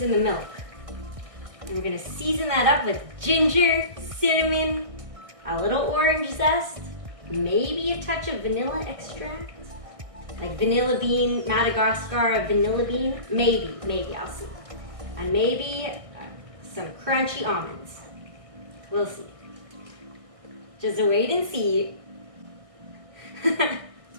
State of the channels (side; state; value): left; late; 1.6 ms